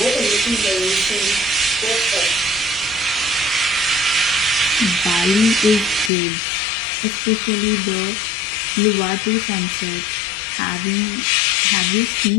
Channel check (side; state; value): right; drops out; at 6.1 s